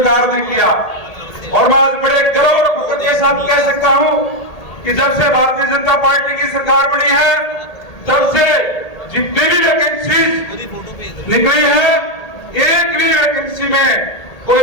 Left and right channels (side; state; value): right; late; 1.8 ms